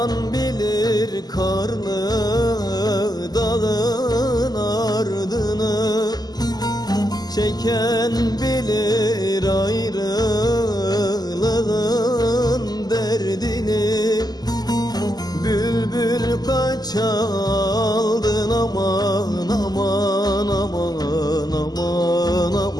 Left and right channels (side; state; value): right; late; 0.20 ms